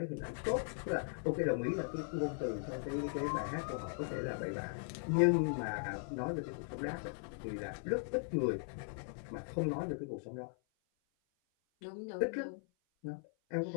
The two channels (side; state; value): right; silent; 52 dB below the other